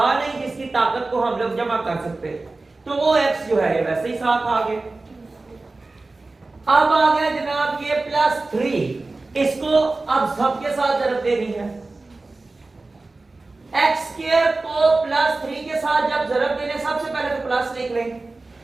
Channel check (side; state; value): left; quieter; 3.3 dB